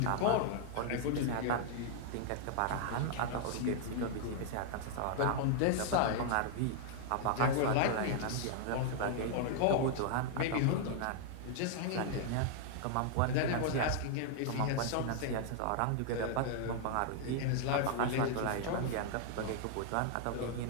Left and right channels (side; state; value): both; different; correlation -0.01